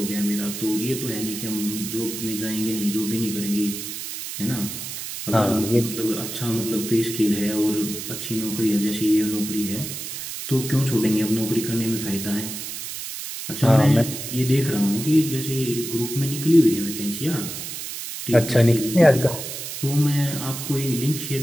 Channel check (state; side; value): noise; right; hiss, 7 dB below the sound